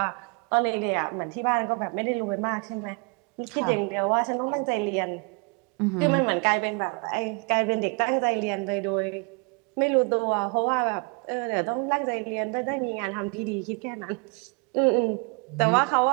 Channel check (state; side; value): quieter; left; 33.9 dB